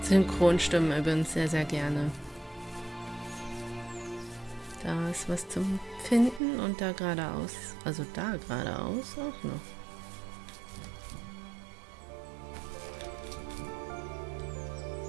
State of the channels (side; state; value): left; drops out; at 6.4 s